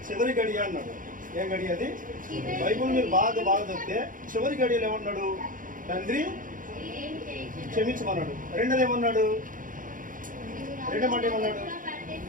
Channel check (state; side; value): late; left; 0.39 ms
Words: అన్నాడు. ఏం గడియ అది? బైబుల్ మీరు బాగా చదివితే చివరి గడియలు ఏమన్నాడు? తండ్రి క్షమించమన్నాడు. రెండోది ఏమన్నాడు? రెండో మాట ఏమన్నాడు?